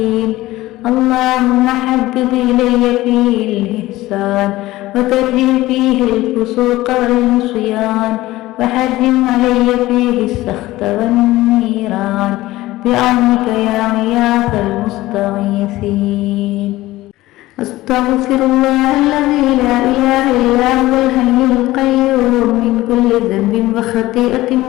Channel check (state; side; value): quieter; right; 17.4 dB